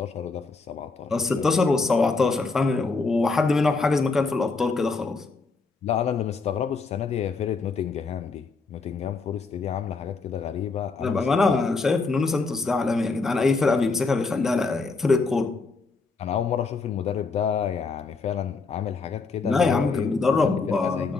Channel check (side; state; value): right; quieter; 4.1 dB